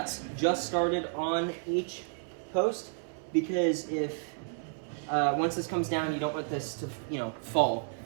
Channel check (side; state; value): left; silent; 57 dB below the other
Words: just started on each post, because if, once this comes down, you don't want this to, fall.